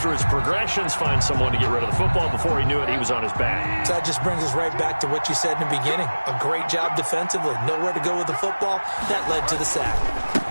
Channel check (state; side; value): inverted; both; correlation -1.00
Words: his progressions, find someone to get rid of the football. Before he knew it, he was on his back. So that just brings us right back to what you said in the beginning. A great job defensively. Nowhere to go with the football. That led to the sack.